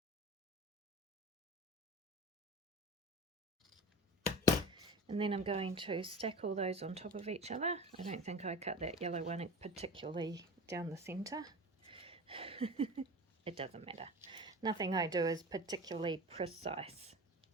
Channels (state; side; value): normal; both; correlation 0.34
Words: And then I'm going to stack all those on top of each other. I don't think I cut that yellow one particularly down the centre. It doesn't matter. Nothing I do is particularly precise.